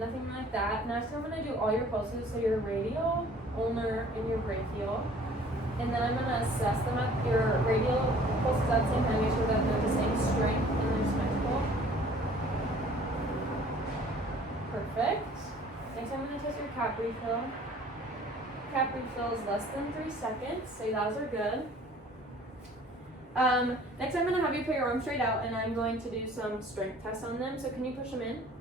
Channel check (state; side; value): normal; both; correlation 0.52